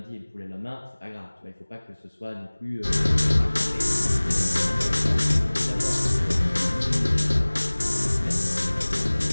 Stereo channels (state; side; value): inverted; both; correlation -1.00